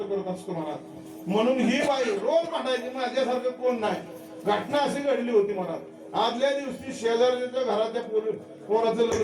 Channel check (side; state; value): both; identical; correlation 1.00